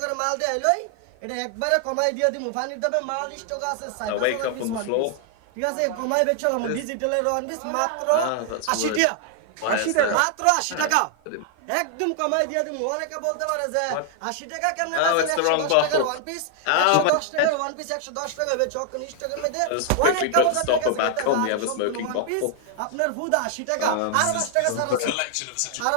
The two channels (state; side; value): different; both; correlation 0.00